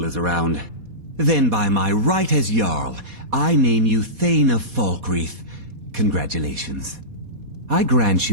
is around. Then by my right as Jarl, I name you Thane of Falkreath. Congratulations. I grant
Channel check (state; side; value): late; left; 4.2 ms